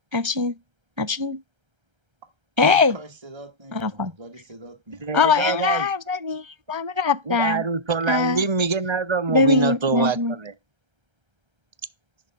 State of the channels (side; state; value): left; late; 1.3 ms